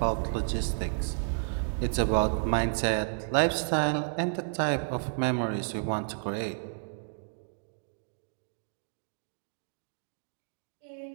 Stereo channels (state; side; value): silent; left; digital silence